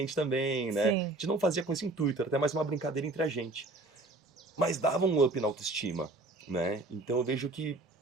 também, né? Sim. A gente não fazia com esse intuito, era até mais uma brincadeira entre a gente. Mas dava um up na autoestima, né? Então eu vejo que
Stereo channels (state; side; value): quieter; left; 3.0 dB